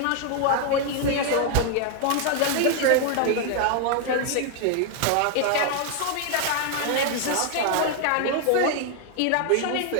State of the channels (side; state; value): both; different; correlation 0.00